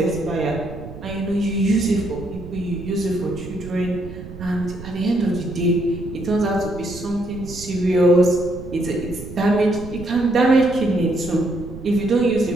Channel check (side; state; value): right; noise; rumble, 13 dB below the sound